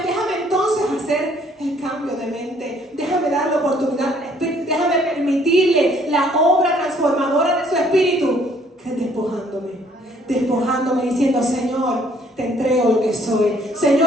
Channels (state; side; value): normal; both; correlation 0.63